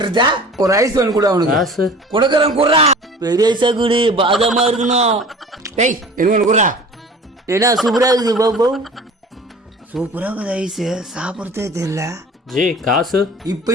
ஒரு ஐஸ் வாங்கி கூட அவனுக்கு காசு கொடுக்கறேன் குடுறா. பெரிய ஐஸா குடு, பாதமா இருக்கணும். டேய் என்ன குடுறா. ஏன்னா சூப்பரா இருக்குது பாபு. சூப்பரா இருக்குது ஐஸ், சாப்பிடறதே தெரியல. ஜி காசு இப்ப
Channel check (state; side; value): normal; both; correlation 0.43